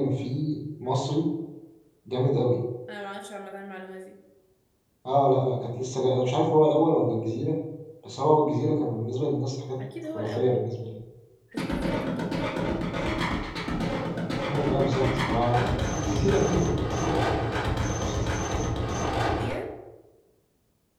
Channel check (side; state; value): both; identical; correlation 1.00